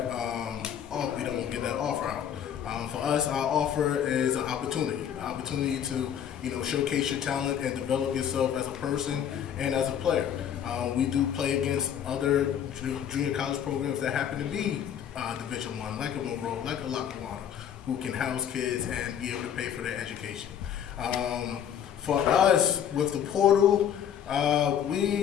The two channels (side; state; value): right; quieter; 9.2 dB